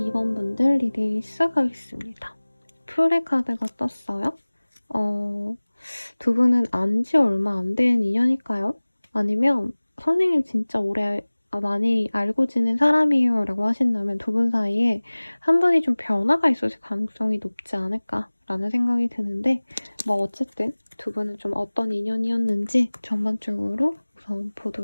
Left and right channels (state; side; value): inverted; both; correlation -1.00